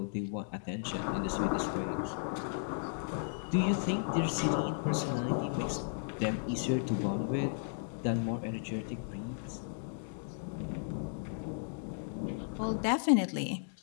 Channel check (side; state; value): right; silent; digital silence